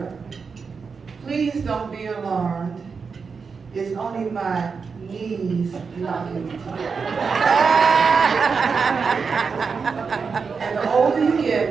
please don't be alarmed. It's only my knees knocking together. And the older you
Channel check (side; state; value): left; quieter; 5.3 dB